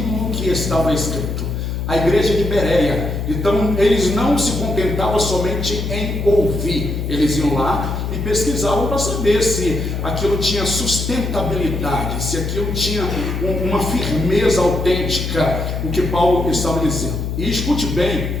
que estava escrito? A igreja de Bereia. Então eles não se contentavam somente em ouvir, eles iam lá e pesquisavam para saber se aquilo tinha sustentabilidade, se aquilo tinha uma firmeza autêntica, o que Paulo estava dizendo. E escute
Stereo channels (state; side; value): noise; left; hum, 3 dB below the sound